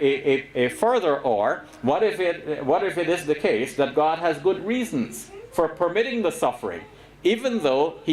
further or. What if it is the case that God has good reasons for permitting the suffering, even though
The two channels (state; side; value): identical; both; correlation 1.00